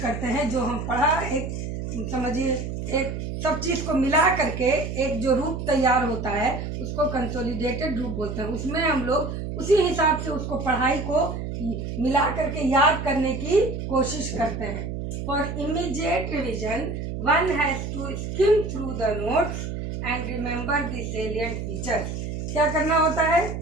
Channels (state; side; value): noise; right; hum, 5 dB below the sound